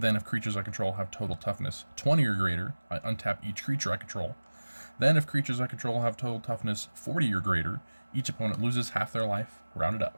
if creatures I control have total toughness 20 or greater, I untap each creature I control. Then if creatures I control have total toughness 40 or greater, each opponent loses half their life, rounded up.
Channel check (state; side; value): inverted; both; correlation -1.00